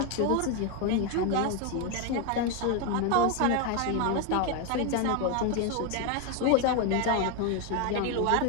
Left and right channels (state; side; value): different; both; correlation 0.01